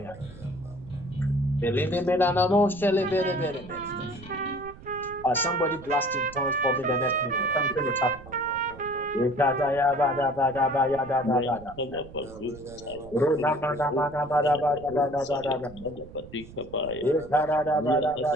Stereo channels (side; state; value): right; noise; rumble, 18 dB below the sound